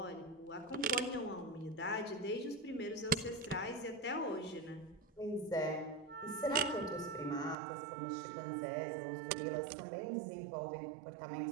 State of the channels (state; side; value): drops out; left; at 7.6 s